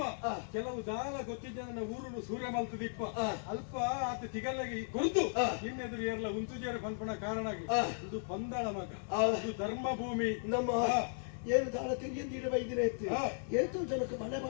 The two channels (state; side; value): silent; right; digital silence